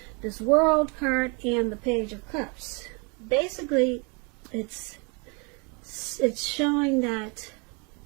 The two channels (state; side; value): quieter; left; 32.7 dB